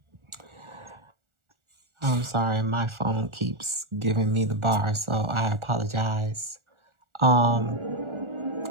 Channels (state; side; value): late; left; 1.4 ms